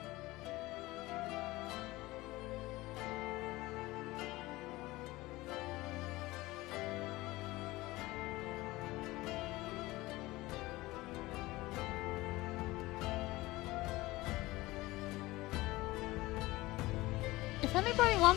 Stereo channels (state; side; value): quieter; right; 19.6 dB